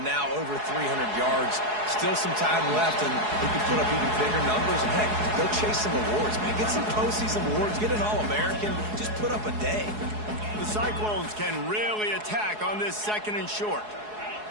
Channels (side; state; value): left; late; 4.7 ms